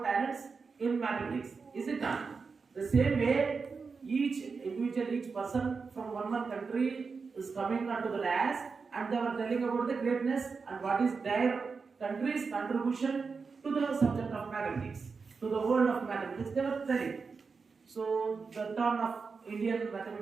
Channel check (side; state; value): left; quieter; 4.9 dB